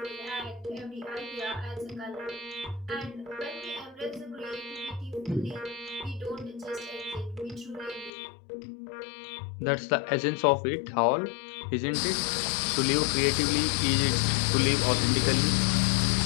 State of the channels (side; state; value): right; drops out; at 8.1 s